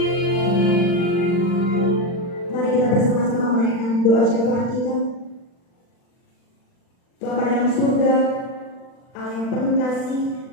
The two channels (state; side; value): late; right; 40 ms